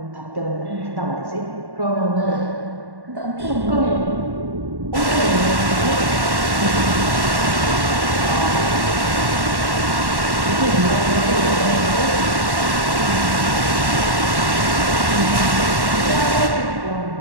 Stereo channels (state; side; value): late; left; 1.1 ms